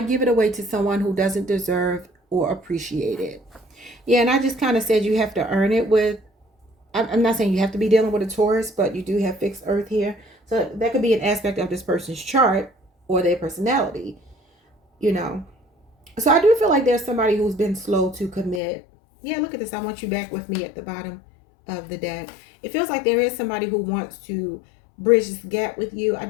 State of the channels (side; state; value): right; drops out; at 18.6 s